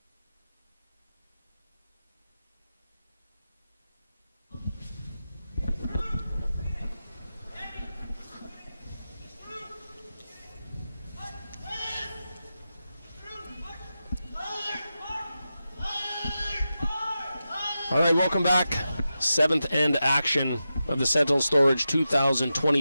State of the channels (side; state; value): both; inverted; correlation -0.91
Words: All right, welcome back. 7th end action of the Sentinel Storage